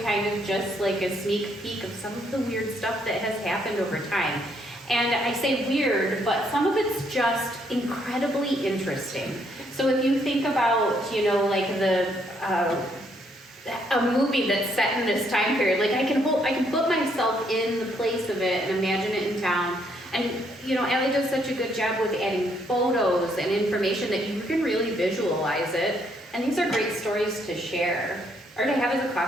of just like a sneak peek of some of the weird stuff that has happened over time. And I say weird, but some of it's just incredibly interesting. So if you think about, you know, like a movie that's set in this time period, like I can put myself in the place of it and imagine it in town. And you know, Allie does such a good job with adding photos and information that you can really visualize it. And these are great stories to share or to have as a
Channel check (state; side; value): normal; both; correlation 0.71